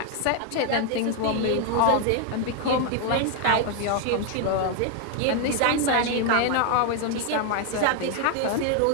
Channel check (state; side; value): different; both; correlation 0.00